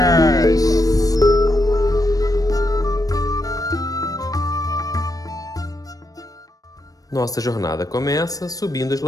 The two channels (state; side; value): late; right; 0.18 ms